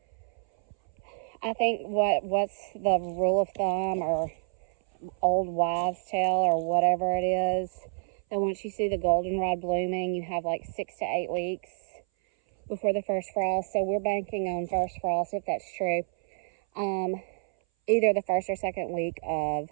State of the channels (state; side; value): silent; left; 58 dB below the other